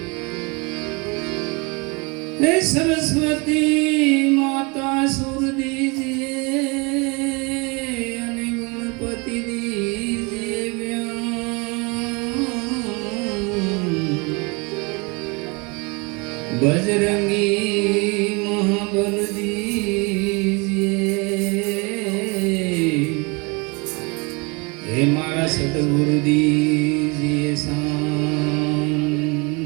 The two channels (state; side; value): quieter; left; 29.1 dB